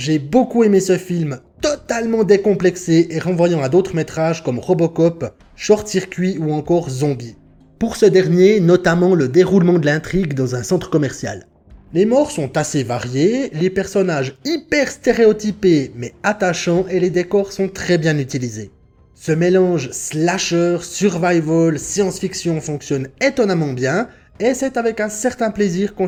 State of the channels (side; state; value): both; identical; correlation 1.00